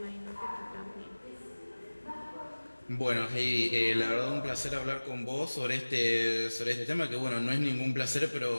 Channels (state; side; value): inverted; both; correlation -1.00